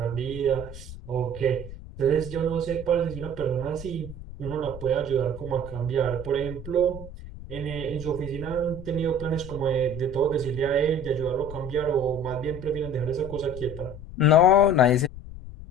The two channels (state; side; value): noise; left; rumble, 13 dB below the sound